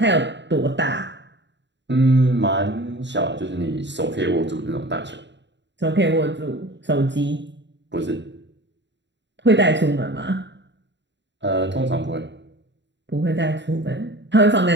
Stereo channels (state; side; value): late; left; 0.52 ms